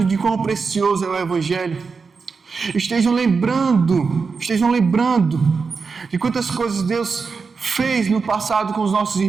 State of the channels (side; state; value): left; quieter; 5.0 dB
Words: de quão precioso é o Evangelho, estejam lembrando de quantas coisas Deus fez no passado com os nossos